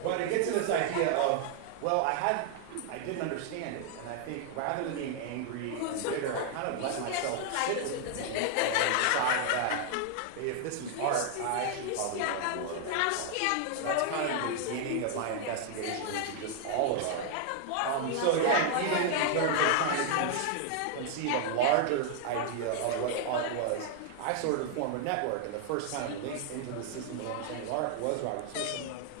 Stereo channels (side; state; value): both; different; correlation 0.00